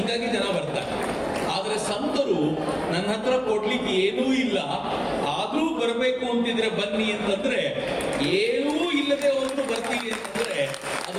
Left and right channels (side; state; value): both; identical; correlation 1.00